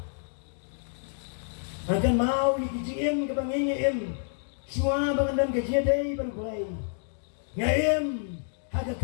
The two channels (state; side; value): silent; right; digital silence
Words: Akan mau ikijim kabangingim semua bangadan kajiaday berbulay. Ngaim haga